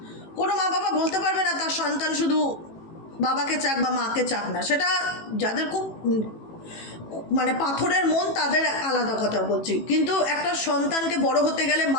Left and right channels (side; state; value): right; late; 18 ms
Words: কোনো মা বাবা বলতে পারবে না তার সন্তান শুধু বাবাকে চাক বা মাকে চাক না। সেটা যাদের খুব মানে পাথরের মন তাদের আলাদা কথা বলছি, কিন্তু একটা সন্তানকে বড় হতে গেলে